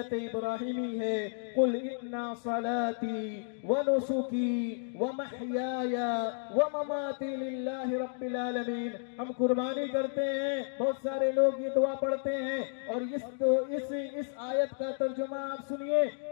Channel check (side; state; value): right; silent; digital silence